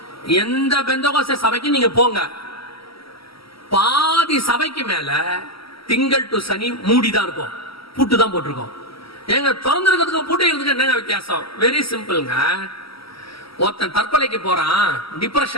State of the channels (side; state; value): right; late; 0.75 ms